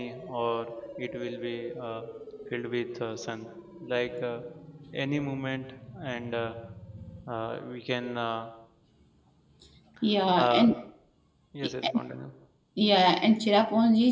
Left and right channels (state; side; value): identical; both; correlation 1.00